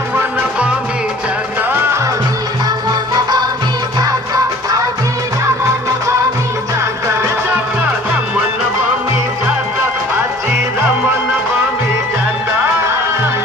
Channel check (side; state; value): both; normal; correlation 0.50